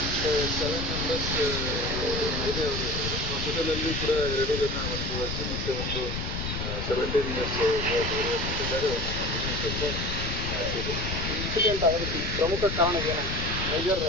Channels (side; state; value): left; noise; rumble, 3 dB below the sound